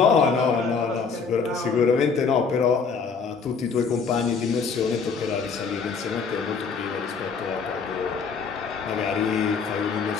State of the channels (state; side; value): quieter; right; 5.4 dB